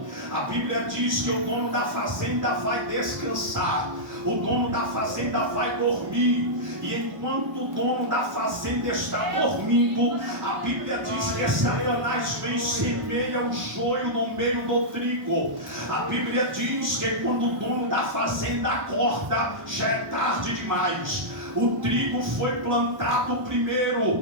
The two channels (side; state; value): left; late; 1.1 ms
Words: A Bíblia diz que o dono da fazenda vai descansar, o dono da fazenda vai dormir. E enquanto o dono da fazenda está dormindo, a Bíblia diz que Satanás vem e semeia o joio no meio do trigo. A Bíblia diz que quando o dono da fazenda acorda, já é tarde demais. O trigo foi plantado primeiro,